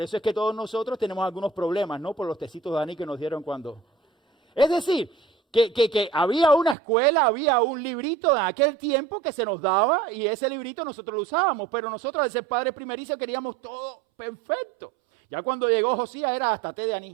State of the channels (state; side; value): drops out; left; at 6.8 s